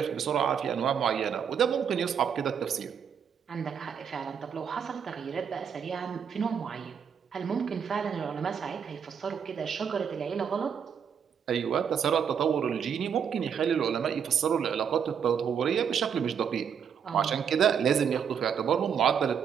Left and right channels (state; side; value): quieter; left; 7.5 dB